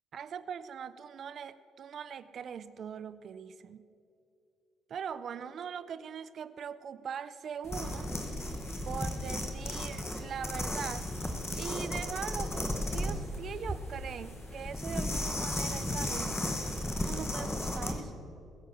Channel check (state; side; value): normal; both; correlation 0.77